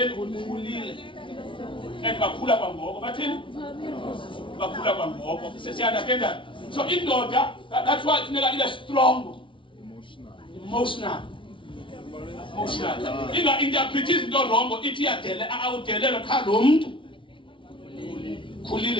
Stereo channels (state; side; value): late; right; 0.25 ms